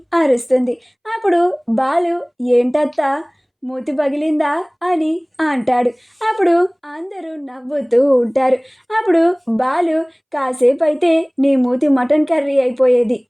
అరుస్తుంది. అప్పుడు బాలు, ఏంటత్తా మూతి పగిలిందా అని అంటాడు. అప్పుడు అందరూ నవ్వుతూ ఉంటారు. అప్పుడు బాలు, కాసేపు అయితే నీ మూతి మటన్ కర్రీ అయిపోయేది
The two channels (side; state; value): both; identical; correlation 1.00